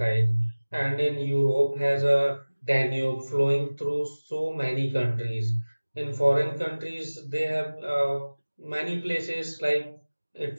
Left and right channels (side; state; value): both; inverted; correlation -1.00